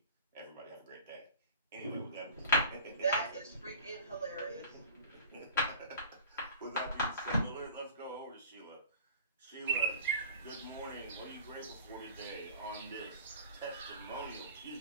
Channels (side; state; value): both; inverted; correlation -0.44